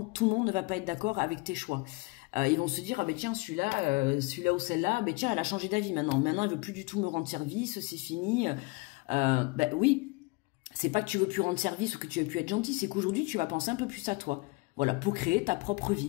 tout le monde ne va pas être d'accord avec tes choix. Ils vont se dire, ah ben tiens, celui-là ou celle-là, ben tiens, elle a changé d'avis maintenant. Maintenant, elle veut plus du tout me rendre service, c'est fini. Ben oui, c'est pas que tu veux plus rendre service ou que tu veux plus être gentil, c'est qu'aujourd'hui, tu vas penser un peu plus à toi. Voilà, pour créer ta propre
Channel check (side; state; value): right; quieter; 25.7 dB